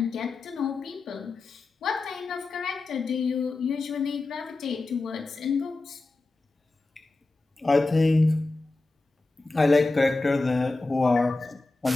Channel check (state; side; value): quieter; right; 3.3 dB